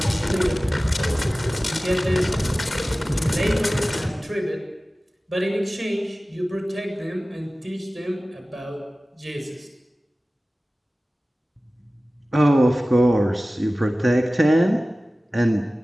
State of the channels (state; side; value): normal; both; correlation 0.97